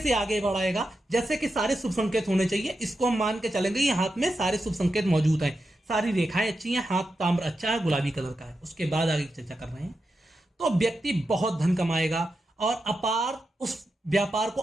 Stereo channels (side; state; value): both; normal; correlation 0.88